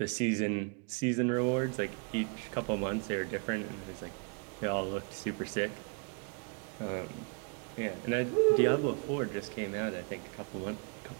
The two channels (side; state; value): left; quieter; 35.8 dB